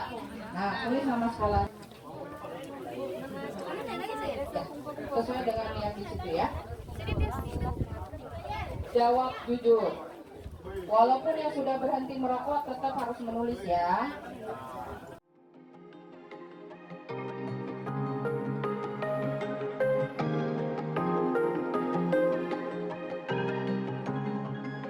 Nah, tulis nama sekolah. Ya, sesuai dengan yang di situ ya. Jawab jujur. Walaupun yang sudah berhenti merokok tetap harus menulis ya.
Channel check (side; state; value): both; identical; correlation 1.00